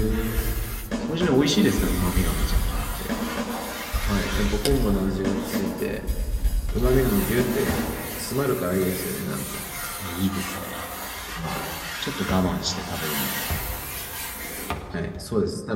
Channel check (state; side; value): identical; both; correlation 1.00